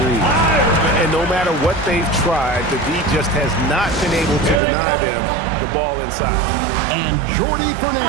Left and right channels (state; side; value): drops out; left; at 4.6 s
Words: threes. And no matter what they've tried, the D just has not been able to deny them the ball inside. And Jordi